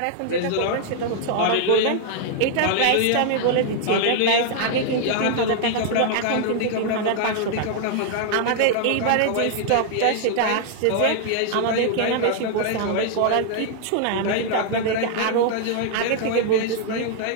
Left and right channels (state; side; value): different; both; correlation -0.01